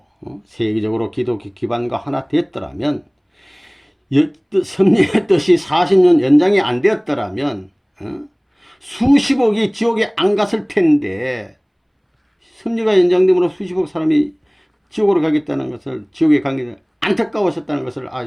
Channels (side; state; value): both; identical; correlation 1.00